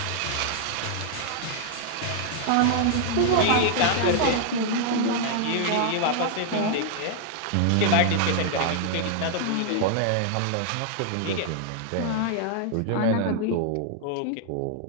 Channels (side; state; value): both; different; correlation 0.00